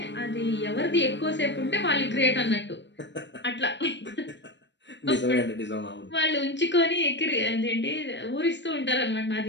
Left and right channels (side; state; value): right; late; 0.52 ms